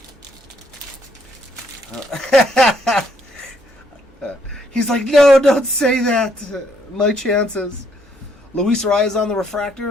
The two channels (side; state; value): both; normal; correlation 0.70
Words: He's like, no, don't say that. My chances. Luis Arias on the